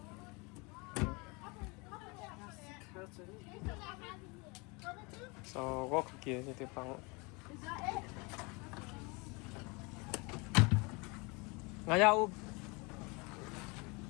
so có kia như thế bằng ngay nhau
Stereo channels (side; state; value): right; quieter; 28.2 dB